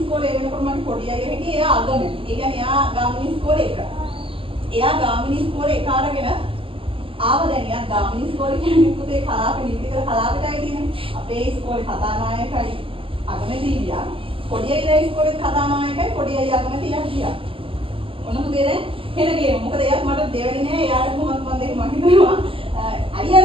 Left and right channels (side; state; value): left; late; 0.26 ms